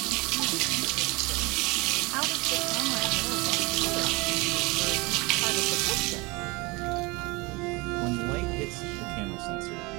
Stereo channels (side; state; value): left; quieter; 25.1 dB